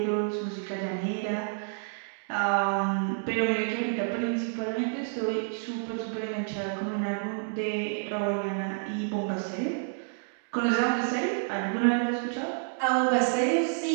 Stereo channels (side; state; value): left; silent; digital silence